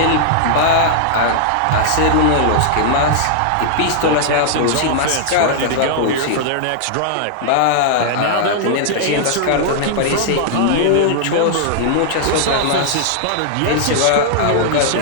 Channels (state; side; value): different; both; correlation -0.01